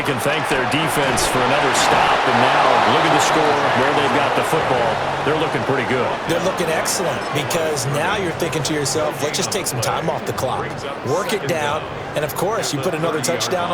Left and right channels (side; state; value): both; identical; correlation 1.00